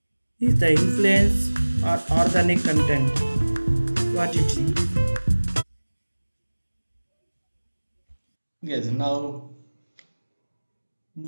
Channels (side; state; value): both; inverted; correlation -1.00